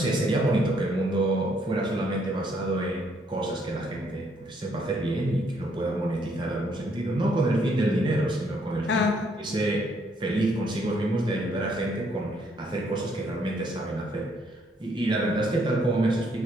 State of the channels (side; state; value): both; normal; correlation 0.69